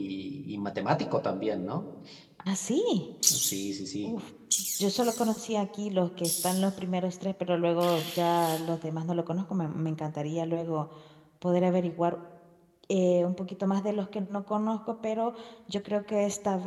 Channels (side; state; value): both; identical; correlation 1.00